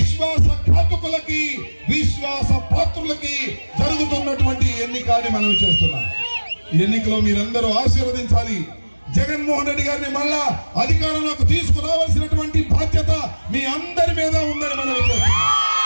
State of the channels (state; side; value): inverted; both; correlation -1.00